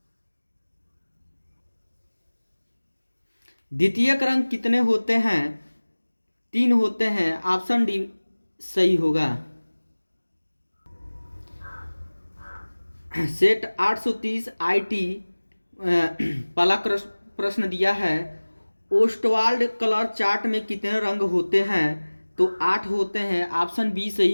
द्वितीयक रंग कितने होते हैं? 3 होते हैं। ऑप्शन डी सही होगा। सेट 830 IT पहला प्रश्न दिया है ओस्टवाल्ड कलर चार्ट में कितने रंग होते हैं? तो 8 होते हैं। ऑप्शन बी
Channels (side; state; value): both; inverted; correlation -1.00